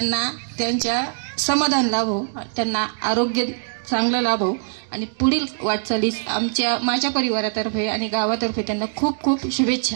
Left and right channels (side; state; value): left; silent; digital silence